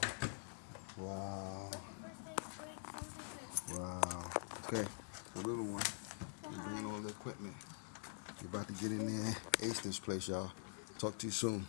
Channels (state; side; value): silent; right; digital silence